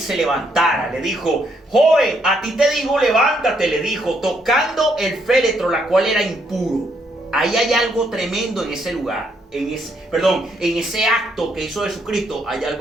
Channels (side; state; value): both; normal; correlation 0.73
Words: levantara. Le dijo: joven, a ti te digo, levántate, le dijo, tocando el féretro, la cual era impuro. Ahí hay algo tremendo en ese lugar, en ese acto que hizo Jesucristo. Hay